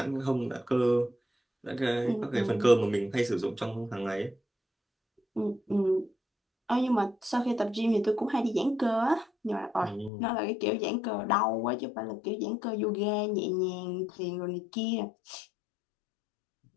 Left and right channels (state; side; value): drops out; right; at 10.1 s